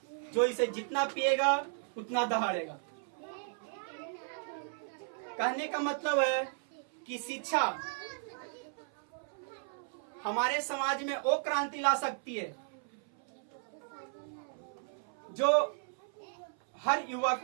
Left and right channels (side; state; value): left; silent; 54 dB below the other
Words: जो इसे जितना पिएगा उतना दहाड़ेगा। कहने का मतलब है कि शिक्षा हमारे समाज में वो क्रांति ला सकती है जो हर युवा